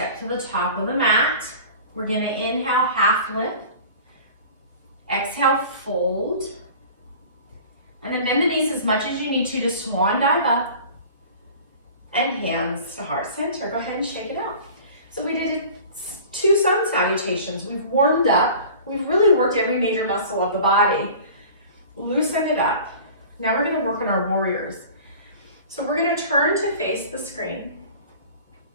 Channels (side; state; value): both; inverted; correlation -0.42